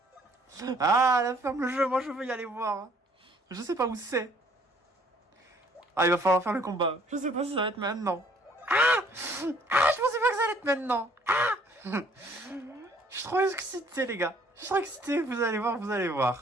Ah, la ferme le jeu, moi je veux y aller voir. Je sais pas où c'est. Ah, il va falloir faire le combat. Je sais pas si ça va être maintenant. Ah, je pensais pas que ça allait être maintenant. Ah. Je suis trop excité, les gars. Je suis trop excité, vous allez voir, vous allez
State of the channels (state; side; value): normal; both; correlation 0.60